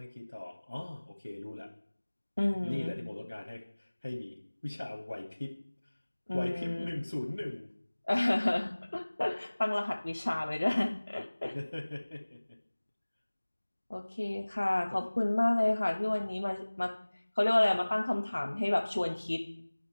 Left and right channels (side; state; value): both; inverted; correlation -1.00